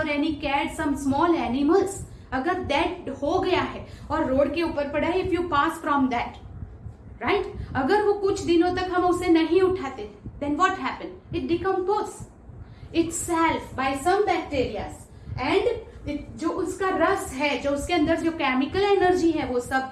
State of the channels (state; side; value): identical; both; correlation 1.00